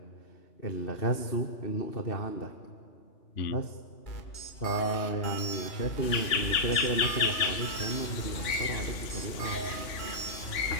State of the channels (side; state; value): right; late; 2.9 ms